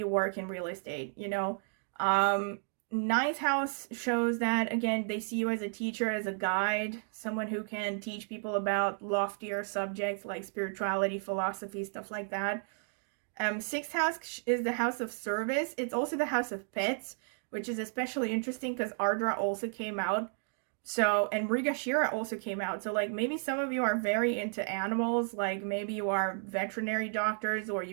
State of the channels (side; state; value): left; silent; 56 dB below the other